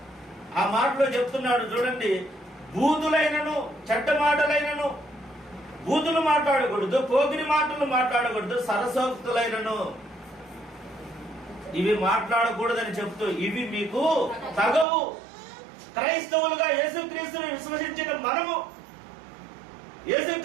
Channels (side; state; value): left; drops out; at 14.9 s